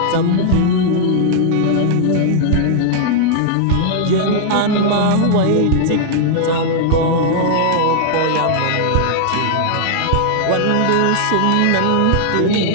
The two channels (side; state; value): both; different; correlation -0.01